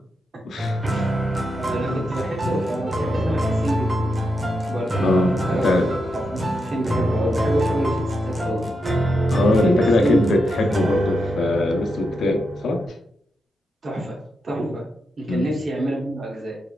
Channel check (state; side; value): normal; both; correlation 0.85